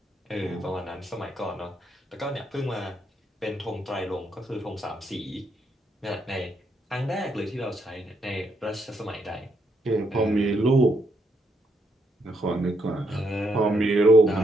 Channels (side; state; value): both; normal; correlation 0.76